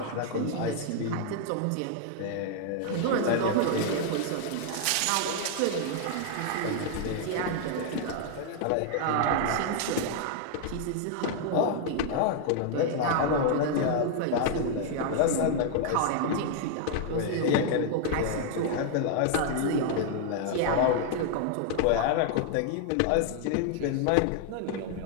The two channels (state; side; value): different; both; correlation 0.00